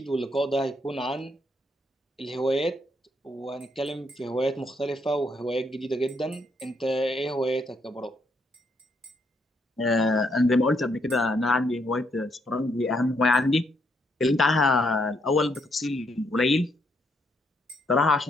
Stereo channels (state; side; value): normal; both; correlation 0.74